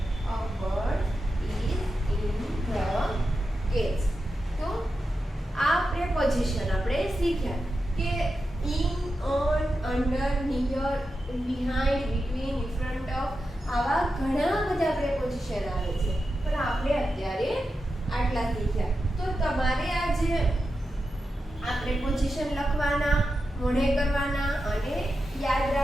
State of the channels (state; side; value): normal; both; correlation 0.90